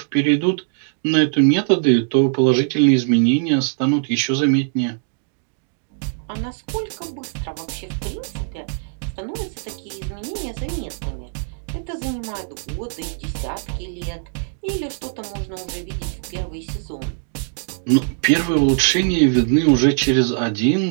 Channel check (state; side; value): silent; left; digital silence